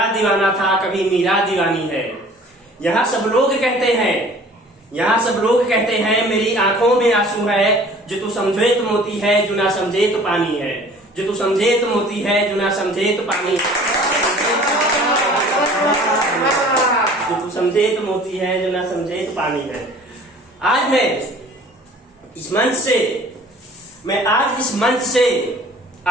दीवाना था, कभी मीरा दीवानी है। यहाँ सब लोग कहते हैं मेरी आंखों में आंसू है। जो तू समझे तो मोती है, जो ना समझे तो पानी है। जो तू समझे तो मोती है, जो ना समझे तो पानी है। जो तू समझे तो मोती है, जो ना समझे तो पानी है। आज इस मंच से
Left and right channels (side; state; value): both; normal; correlation 0.49